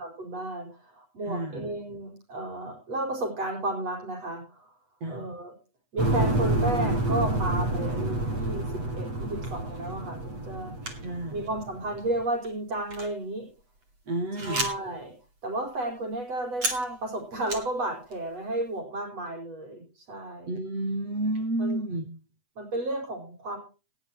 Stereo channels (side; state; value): left; late; 8.1 ms